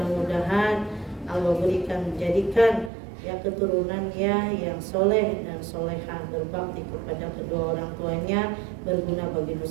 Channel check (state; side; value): drops out; left; at 2.9 s